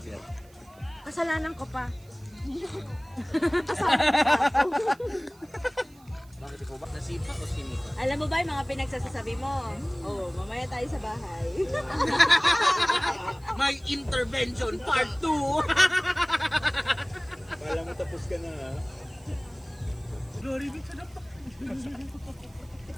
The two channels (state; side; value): noise; right; hiss, 28 dB below the sound